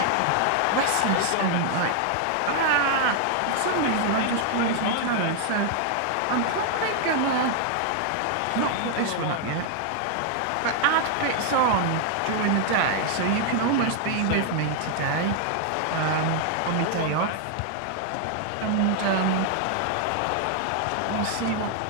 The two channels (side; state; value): both; different; correlation 0.00